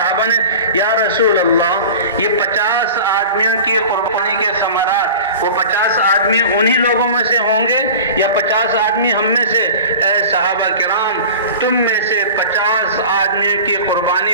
نے، یا رسول اللہ، یہ 50 آدمیوں کی قربانی کے ثمرات، وہ 50 آدمی انہی لوگوں میں سے ہوں گے یا 50 آدمی ہم میں سے؟ اے صحابہ کرام، تم میں سے 50 آدمیوں کی قربانی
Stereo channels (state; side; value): inverted; both; correlation -0.37